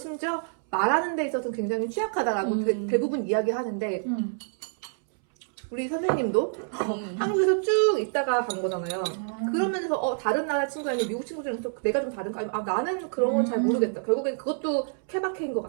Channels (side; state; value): left; silent; 60 dB below the other